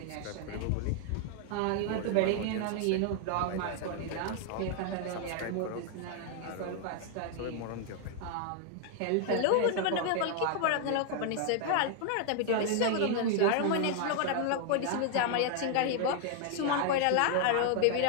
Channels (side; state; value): both; different; correlation 0.00